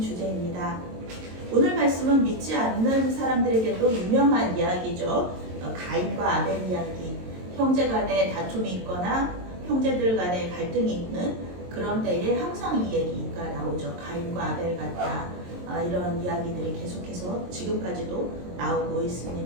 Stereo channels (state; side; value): late; left; 22 ms